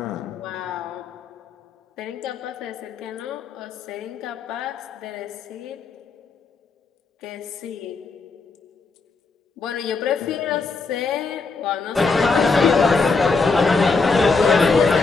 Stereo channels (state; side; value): quieter; right; 4.3 dB